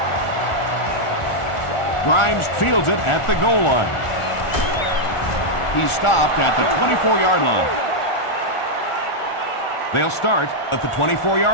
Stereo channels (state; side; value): late; right; 1.4 ms